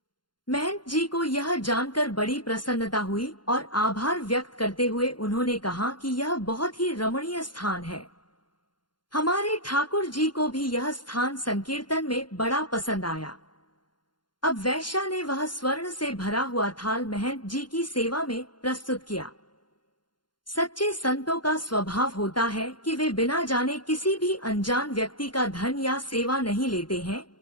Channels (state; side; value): late; right; 0.71 ms